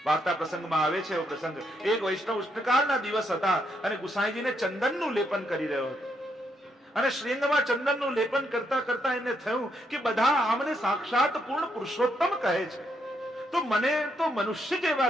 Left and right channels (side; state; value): both; normal; correlation 0.77